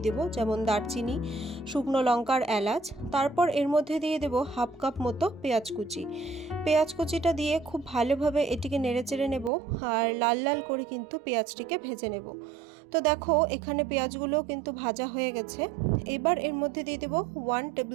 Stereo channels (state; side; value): drops out; left; at 9.5 s